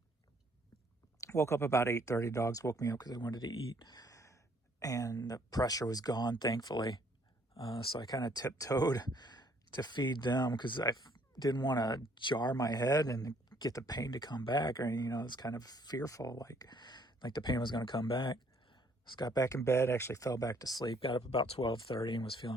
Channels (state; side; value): normal; both; correlation 0.64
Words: Woke up about 8:30. Dogs woke me up because they wanted to eat. And the pressure was gone, thankfully. So I kind of tiptoed to feed them because I didn't want to jar my head and get the pain to come back. Or, I was kind of fearful, like the pain was going to come back. Just got back in bed, actually fell back to sleep. Got up about 12:30 and was